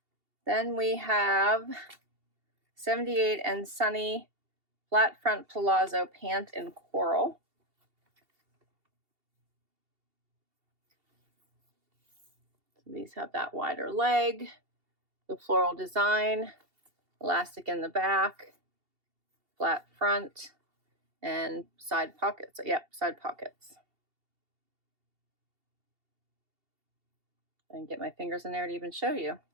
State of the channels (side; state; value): left; late; 2.7 ms